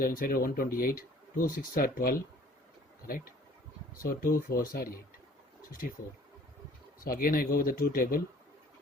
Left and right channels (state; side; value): normal; both; correlation 0.53